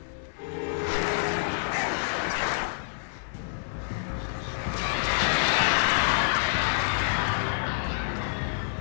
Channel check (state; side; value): silent; right; digital silence